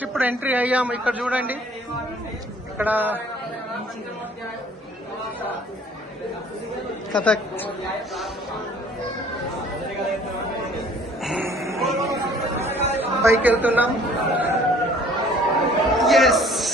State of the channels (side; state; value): both; normal; correlation 0.55